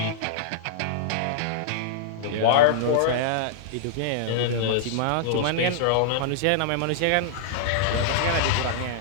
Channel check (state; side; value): different; both; correlation -0.02